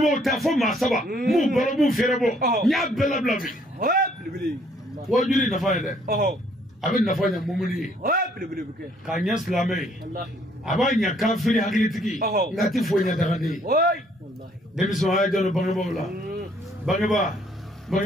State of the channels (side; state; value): both; normal; correlation 0.64